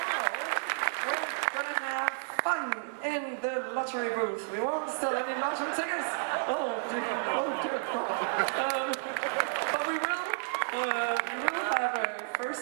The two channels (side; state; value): left; silent; digital silence